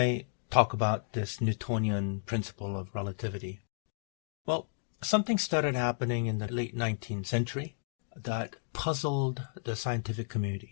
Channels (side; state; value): right; silent; digital silence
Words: talk about this Newtonian principle of relativity? Well, something started happening in the late 19th century that puzzled the scientific